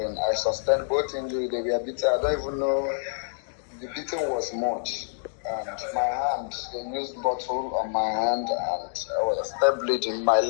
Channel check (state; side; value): silent; right; digital silence